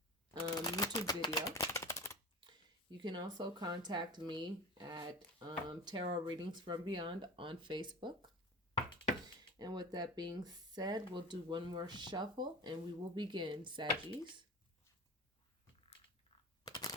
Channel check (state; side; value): normal; both; correlation 0.32